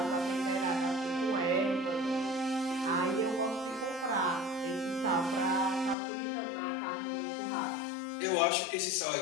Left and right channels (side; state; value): right; drops out; at 6.0 s